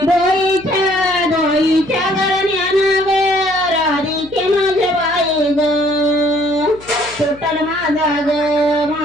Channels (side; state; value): left; noise; hum, 21 dB below the sound